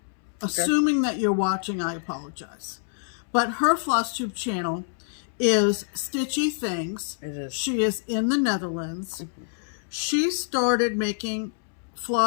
assuming that you're watching, I apologize. But her FlossTube channel is Stitchy Things. It is. She is in the Netherlands. Mm-hmm. She started making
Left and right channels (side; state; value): right; silent; 61 dB below the other